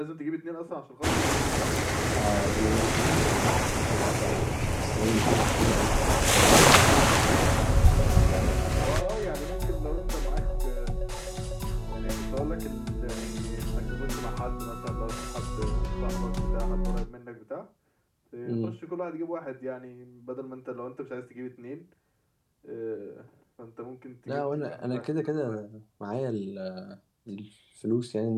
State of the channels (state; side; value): identical; both; correlation 1.00